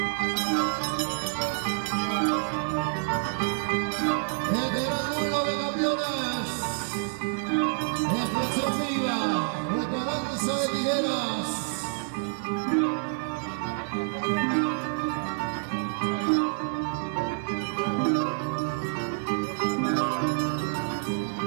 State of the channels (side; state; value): left; silent; digital silence